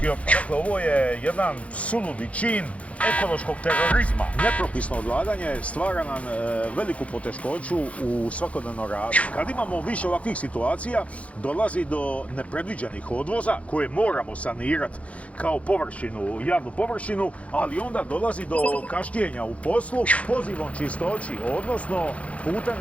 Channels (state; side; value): late; right; 0.064 ms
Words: otpad. Dakle, ovo je jedan suludi čin ekološkog terorizma. Nepropisno odlaganje stvara nam veliku poteškoću u svakodnevnom radu. Kad imamo više ovakvih situacija, dolazi do nepredviđenih odvoza koje moramo sanirati kao površinu, javnu površinu, ali onda dolazi do kašnjenja u poslu pozivom čistoći, odnosno